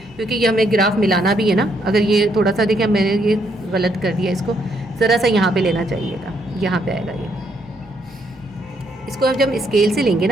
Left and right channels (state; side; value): noise; right; rumble, 29 dB below the sound